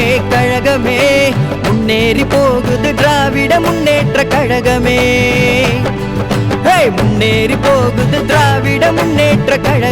கழகமே முன்னேறி போகுது திராவிட முன்னேற்ற கழகமே முன்னேறி போகுது திராவிட முன்னேற்ற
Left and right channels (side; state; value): both; identical; correlation 1.00